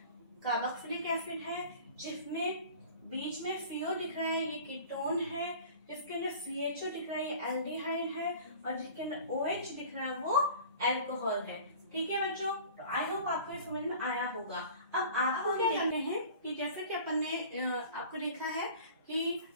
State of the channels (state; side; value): inverted; both; correlation -0.43